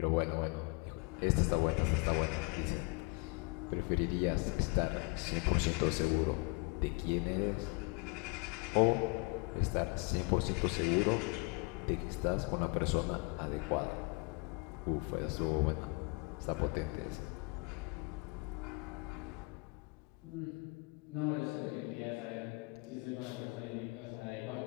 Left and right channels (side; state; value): right; quieter; 29.6 dB